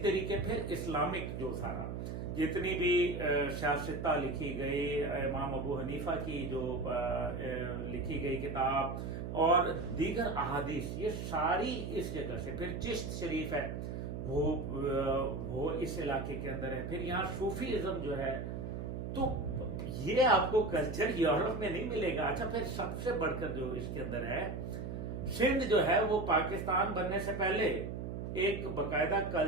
तरीके फिर इस्लामिक जो सारा जितनी भी शास्त्रता लिखी गई, इमाम अबू हनीफा की जो लिखी गई किताब और दीगर अहादीस, ये सारी इस जगह से। फिर चिश्त शरीफ है वो इस इलाके के अंदर है। फिर यहाँ सूफीइज्म जो है, तो ये आपको कल्चर यूरोप में नहीं मिलेगा। अच्छा, फिर सबसे बढ़कर जो इसके अंदर है, सिंध जो है वो पाकिस्तान बनने से पहले एक बकायदा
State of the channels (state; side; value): noise; right; hum, 5 dB below the sound